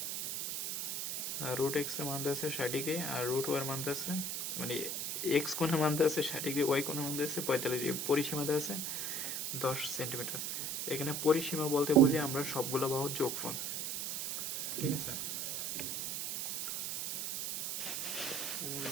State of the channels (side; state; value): right; noise; hiss, 2 dB below the sound